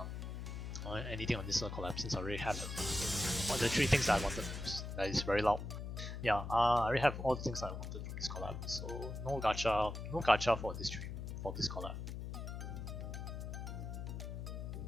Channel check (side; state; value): left; noise; hum, 6 dB below the sound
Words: anything on this collab, since I already have all the 3 things that I wanted. That is very loud. Yeah, I already have all the things I wanted for this collab, so no gacha for this stream, for this collab.